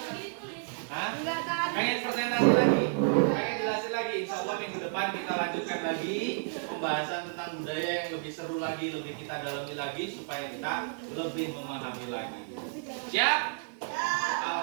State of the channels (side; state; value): left; silent; digital silence